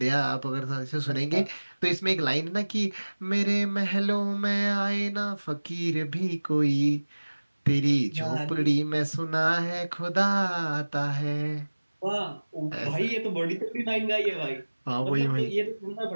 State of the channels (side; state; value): both; inverted; correlation -1.00